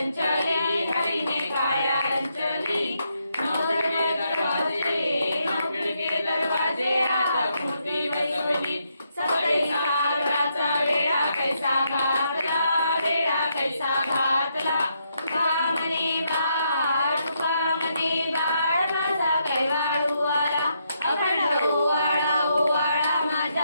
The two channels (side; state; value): both; inverted; correlation -0.78